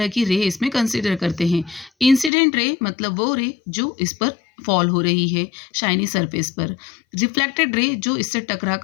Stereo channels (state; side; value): drops out; right; at 2.3 s